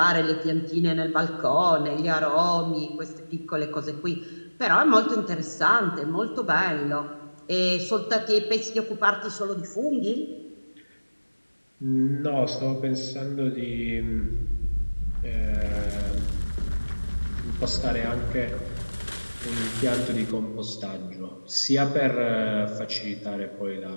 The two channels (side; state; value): both; inverted; correlation -1.00